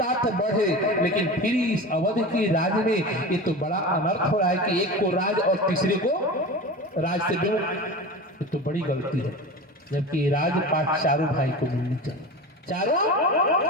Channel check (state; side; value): normal; both; correlation 0.30